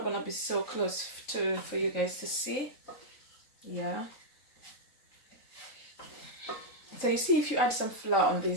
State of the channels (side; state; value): right; late; 3.9 ms